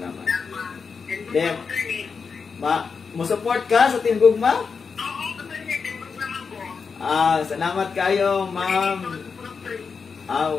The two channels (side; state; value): right; quieter; 5.4 dB